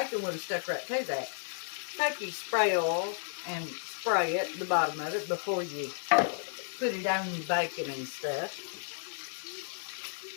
would have stuck right to that. Take your spray oil and spray it at the bottom of it before you put it on your bacon and stuff.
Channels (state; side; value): silent; right; digital silence